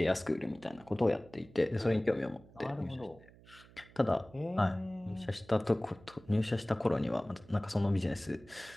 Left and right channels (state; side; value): noise; right; hum, 23 dB below the sound